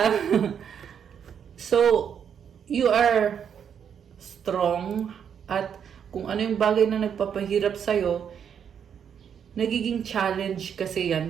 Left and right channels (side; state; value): left; quieter; 8.0 dB